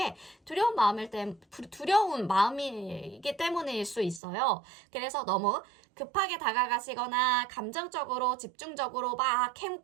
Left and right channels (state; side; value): drops out; left; at 4.2 s